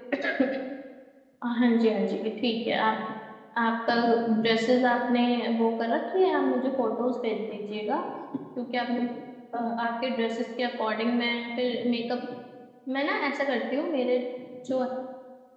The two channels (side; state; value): both; identical; correlation 1.00